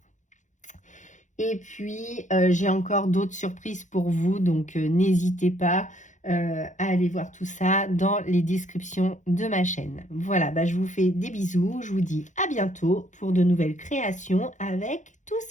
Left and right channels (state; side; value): late; right; 0.36 ms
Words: Et puis, j'ai encore d'autres surprises pour vous, donc n'hésitez pas à aller voir tout ça dans les descriptions de ma chaîne. Voilà, bah, je vous fais des bisous, je vous dis à bientôt pour de nouvelles créations avec tout